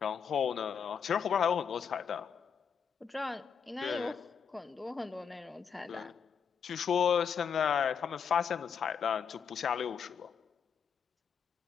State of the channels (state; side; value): quieter; right; 7.0 dB